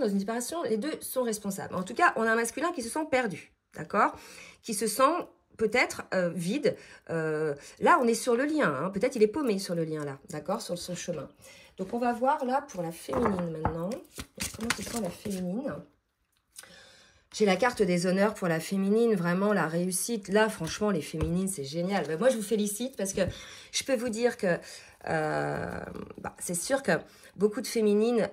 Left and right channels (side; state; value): both; identical; correlation 1.00